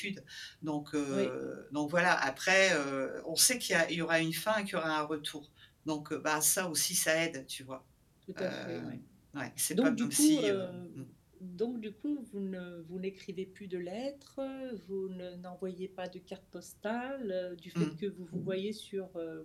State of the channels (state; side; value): identical; both; correlation 1.00